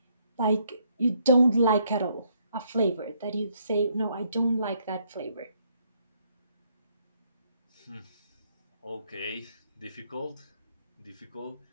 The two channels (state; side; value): inverted; both; correlation -0.71